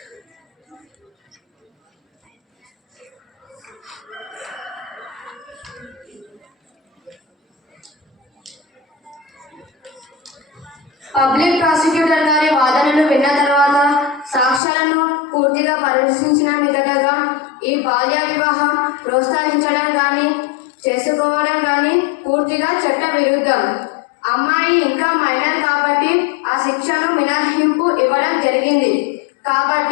పబ్లిక్ ప్రాసిక్యూటర్ గారి వాదనలు విన్న తర్వాత సాక్ష్యాలను పూర్తిగా పరిశీలించిన మీదటగా ఈ బాల్య వివాహం ప్రోత్సహించడం కానీ చేసుకోవడం కానీ పూర్తిగా చట్ట విరుద్ధం. అమ్మాయి ఇంకా మైనర్ కాబట్టి ఆ శిక్షను మినహాయింపు ఇవ్వడం జరిగింది.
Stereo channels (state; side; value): drops out; right; at 14.6 s